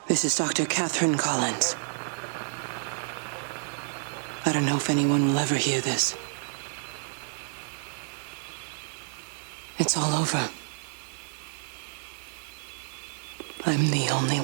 This is Dr. Catherine Collins. I don't know if anyone will ever hear this. It's all over. I'm the only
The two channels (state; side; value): silent; left; digital silence